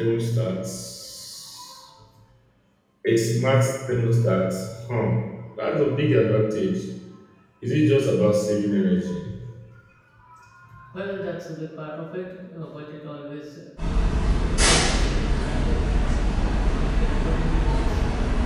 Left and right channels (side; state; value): both; identical; correlation 1.00